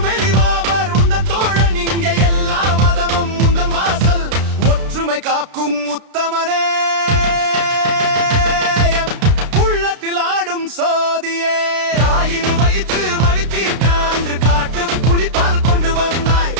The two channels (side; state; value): left; late; 32 ms